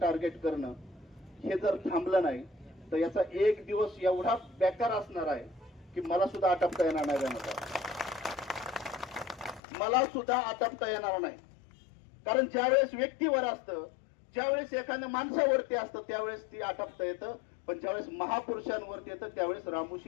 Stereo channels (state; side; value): drops out; right; at 9.6 s